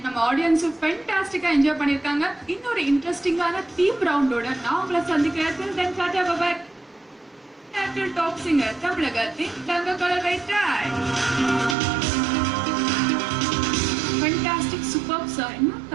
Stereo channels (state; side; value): drops out; left; at 11.8 s